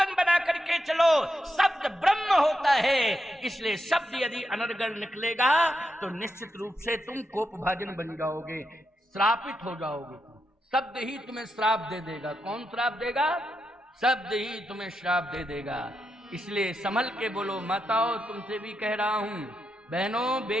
बना करके चलो। शब्द ब्रह्म होता है, इसलिए शब्द यदि अनर्गल निकलेगा तो निश्चित रूप से तुम कोपभाजन बन जाओगे, श्रापित हो जाओगे। शब्द ही तुम्हें श्राप दे देगा। कौन श्राप देगा? शब्द ही तुम्हें श्राप दे देगा। इसलिए संभल के बोलो। माताओं, तुमसे भी कह रहा हूं, बहनों,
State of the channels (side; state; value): both; normal; correlation 0.85